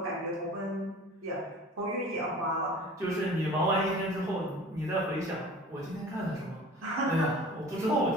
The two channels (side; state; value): both; normal; correlation 0.42